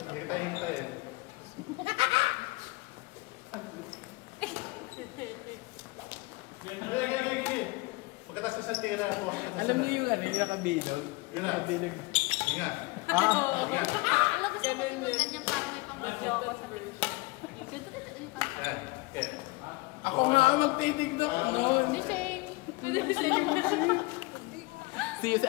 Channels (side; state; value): right; quieter; 23.9 dB